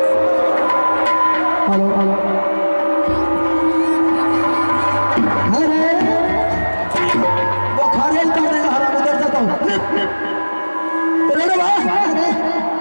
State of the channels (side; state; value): both; inverted; correlation -1.00